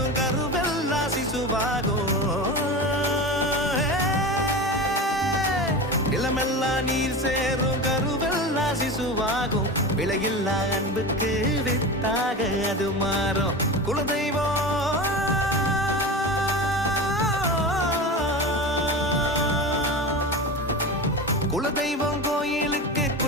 கருவெல்லாம் சிசுவாகும். நிலமெல்லாம் நீர் சேரும் கருவெல்லாம் சிசுவாகும். விலையில்லா அன்புக்கு வித்தாக அது மாறும். குலதெய்வம் குலதெய்வம் கோயிலுக்கு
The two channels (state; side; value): normal; both; correlation 0.27